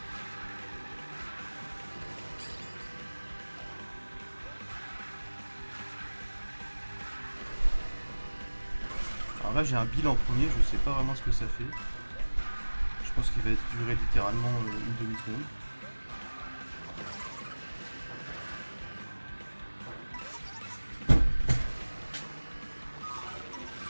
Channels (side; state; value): both; inverted; correlation -1.00